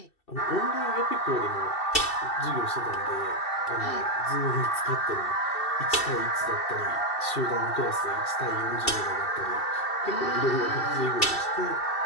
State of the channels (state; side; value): late; right; 2.7 ms